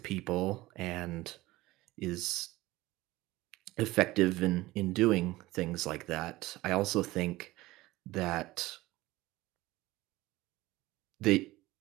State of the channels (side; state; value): left; quieter; 18.9 dB